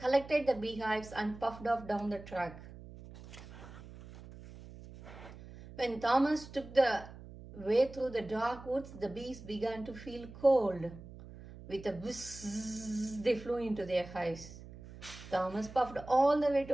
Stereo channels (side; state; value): right; noise; hum, 16 dB below the sound